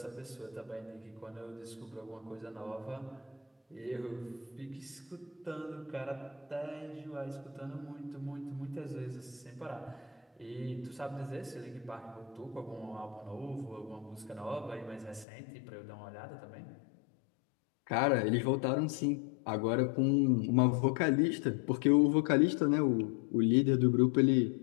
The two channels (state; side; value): drops out; right; at 15.2 s